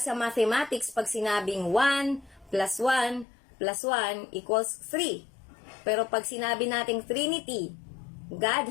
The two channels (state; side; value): drops out; right; at 3.2 s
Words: sa mathematics, pag sinabing 1 plus 1 plus 1 equals 3. Pero pag sinabi nating Trinity,